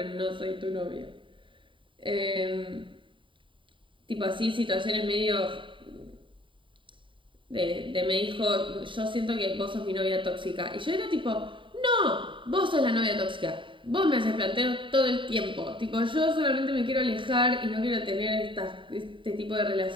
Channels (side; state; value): left; late; 0.25 ms